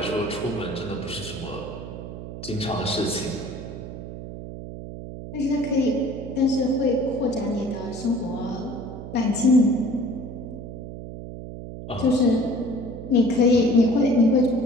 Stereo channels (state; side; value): noise; right; hum, 10 dB below the sound